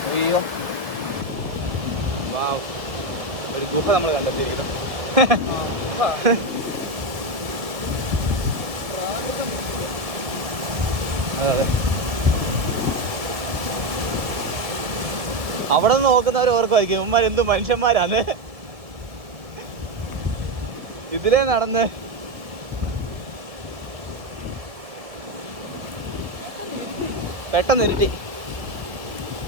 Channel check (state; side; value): late; left; 1.7 ms